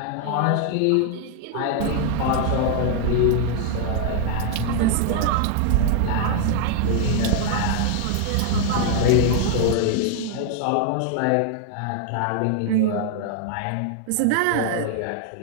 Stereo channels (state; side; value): different; both; correlation 0.00